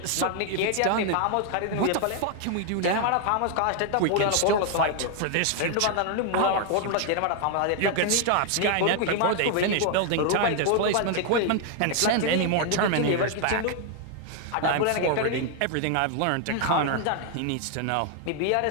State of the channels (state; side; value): different; both; correlation 0.00